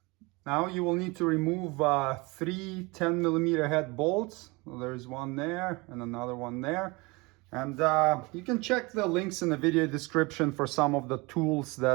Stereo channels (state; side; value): quieter; left; 25.6 dB